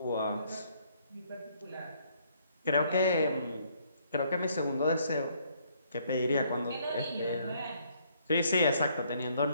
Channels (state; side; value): inverted; both; correlation -0.67